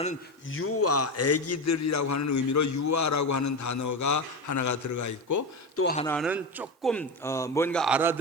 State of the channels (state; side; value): normal; both; correlation 0.19